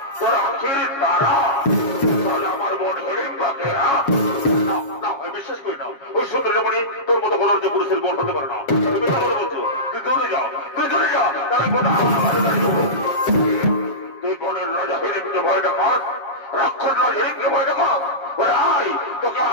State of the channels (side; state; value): right; late; 7.3 ms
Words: তোর আখির তারা তাহলে আমার মন হিড়িম্বাকে না বিশ্বাস করি না ওই সুন্দরী মনে তোর মতো বলার যে পুরুষের বোন হতে পারে না তুমি কথা বলছো তুই দূরে যাও তাহলে গোটা আমার তুই বনের রাজা হিড়িমকে ভয় দেখাস রাক্ষস রাজ হিড়িমকে ভয় দেখাস ওরে আয় তোকে